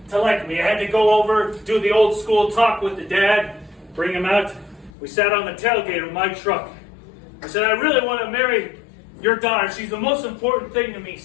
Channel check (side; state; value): right; drops out; at 4.9 s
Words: to like me. I had to go over, do the old school talk with the dad, bring him out. We sat on the tailgate of my truck. I said, "I really want to marry your daughter. She's the most important thing to me,